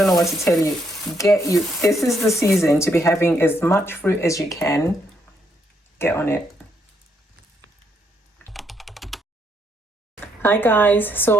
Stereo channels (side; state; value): both; normal; correlation 0.74